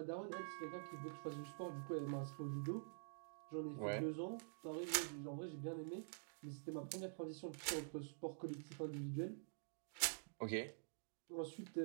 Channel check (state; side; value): silent; left; digital silence